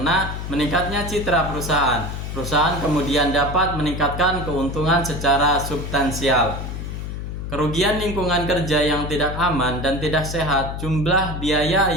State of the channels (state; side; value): noise; left; hum, 6 dB below the sound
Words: meningkatnya citra perusahaan. Perusahaan kemudian dapat meningkatkan keuntungan secara substansial. Kerugian lingkungan kerja yang tidak aman dan tidak sehat. Jumlah biaya